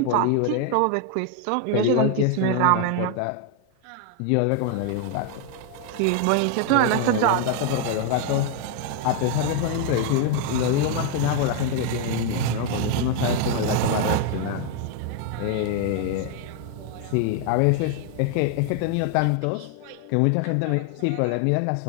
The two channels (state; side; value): different; both; correlation 0.01